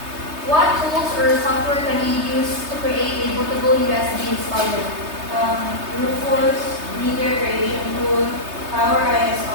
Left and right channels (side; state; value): left; late; 3.3 ms